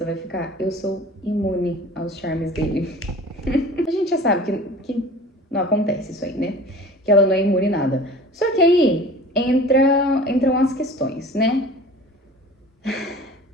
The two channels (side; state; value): both; normal; correlation 0.42